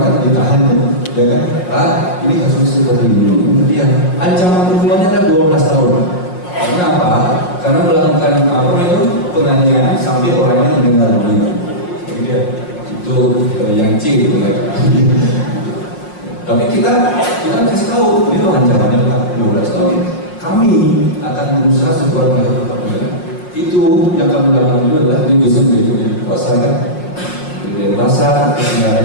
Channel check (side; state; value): right; late; 5.6 ms